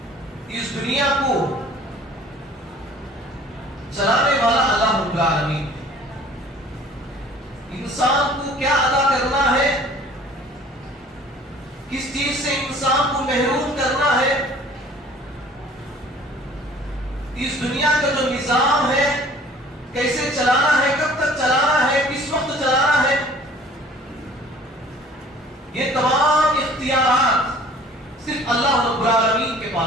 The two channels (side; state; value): both; normal; correlation 0.51